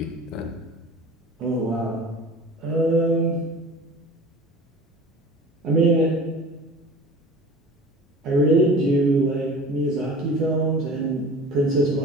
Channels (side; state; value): both; normal; correlation 0.40